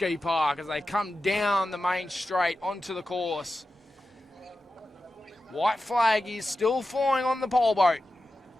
Park as they come down the main straight onto the course. White flag is still flying on the pole boat.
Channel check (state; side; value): normal; both; correlation 0.92